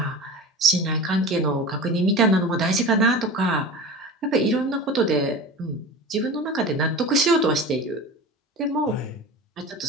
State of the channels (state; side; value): normal; both; correlation 0.32